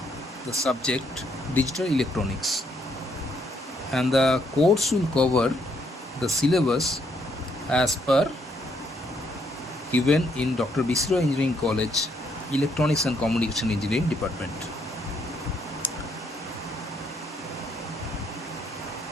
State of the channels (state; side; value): normal; both; correlation 0.72